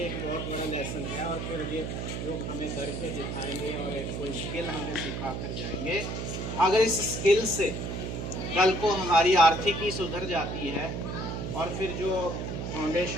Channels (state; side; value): noise; right; hum, 4 dB below the sound